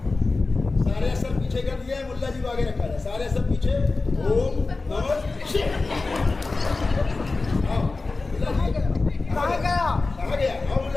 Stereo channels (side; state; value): right; quieter; 3.6 dB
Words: सारे असर पीछे कर दिया है, मुल्ला जी को आगे रखा है। सारे असर पीछे। ओम नमः शिवाय। कहाँ गया? कहाँ गया? आओ